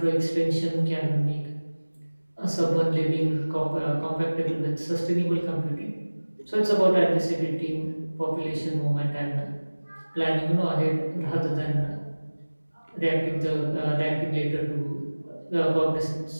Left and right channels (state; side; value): inverted; both; correlation -1.00